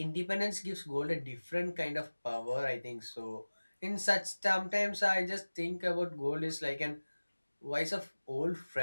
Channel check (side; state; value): both; inverted; correlation -1.00